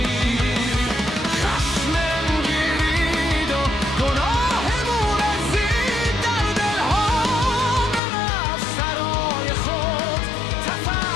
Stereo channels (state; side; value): drops out; right; at 8.0 s